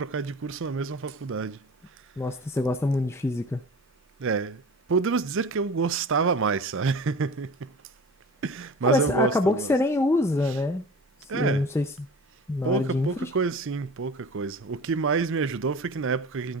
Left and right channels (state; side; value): normal; both; correlation 0.38